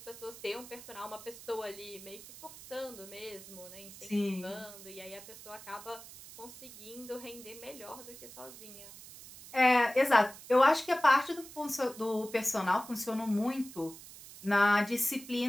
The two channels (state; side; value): noise; right; hiss, 16 dB below the sound